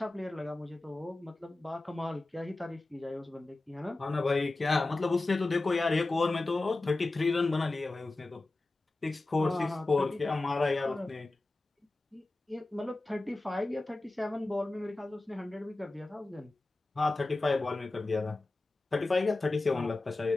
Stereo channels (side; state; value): right; quieter; 3.0 dB